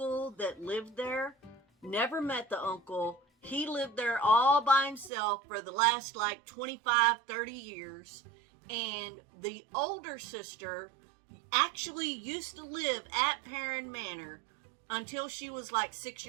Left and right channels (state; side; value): drops out; left; at 5.1 s